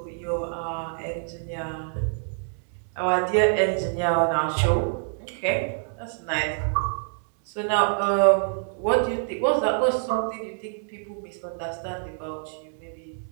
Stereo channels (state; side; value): silent; left; digital silence